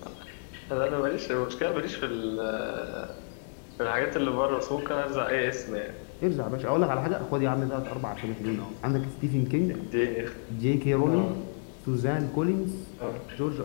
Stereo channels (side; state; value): right; silent; digital silence